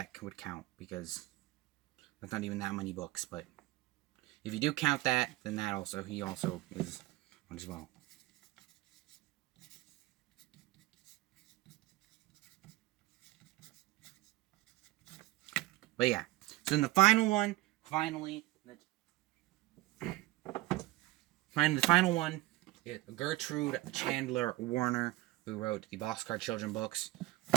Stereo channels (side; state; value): left; quieter; 17.8 dB